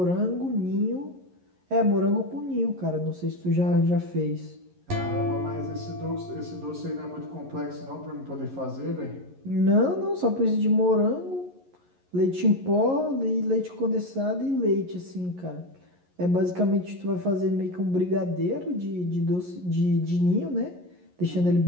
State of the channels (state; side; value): late; left; 11 ms